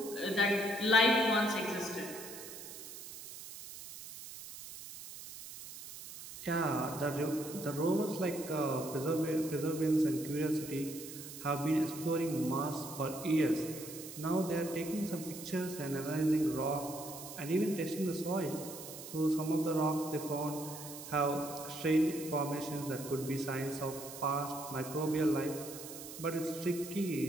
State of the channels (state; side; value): noise; right; hiss, 12 dB below the sound